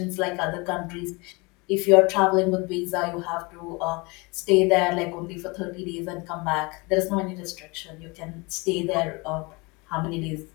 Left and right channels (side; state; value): right; quieter; 26.8 dB